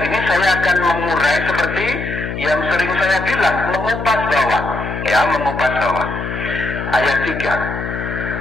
ini saya akan mengurai seperti yang sering saya bilang, mengupas bawang. Ya, mengupas bawang. Ayat 3.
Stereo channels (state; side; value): noise; left; hum, 6 dB below the sound